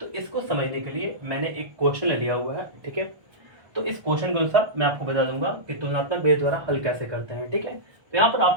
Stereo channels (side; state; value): left; late; 1.3 ms